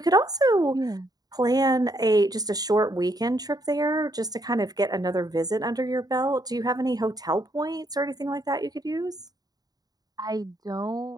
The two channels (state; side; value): late; left; 0.19 ms